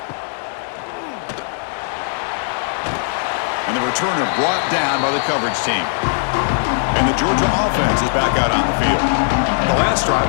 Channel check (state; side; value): silent; right; digital silence